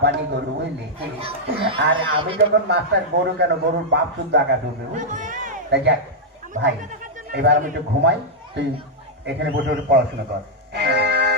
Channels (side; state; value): both; normal; correlation -0.06